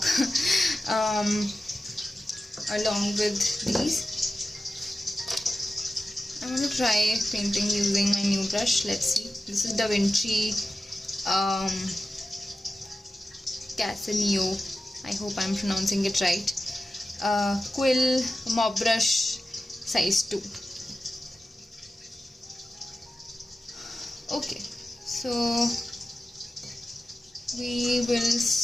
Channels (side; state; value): both; normal; correlation 0.94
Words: along with these. I'm going to try painting using my new brush. Let's see. This is Da Vinci Casaneo. I hope I'm pronouncing it right. Quill Mob Brush size 2. Okay, so we will